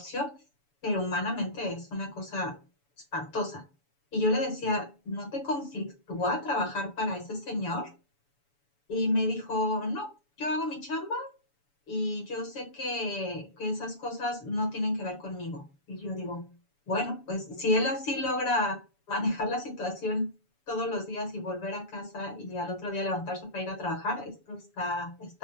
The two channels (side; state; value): right; late; 7.0 ms